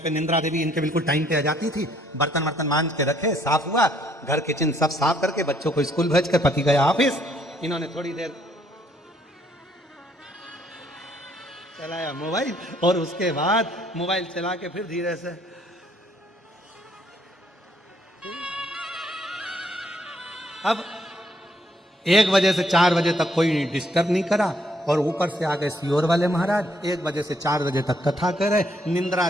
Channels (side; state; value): both; normal; correlation 0.68